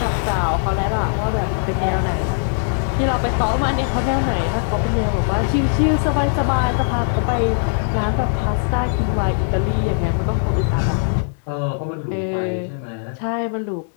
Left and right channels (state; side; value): silent; right; digital silence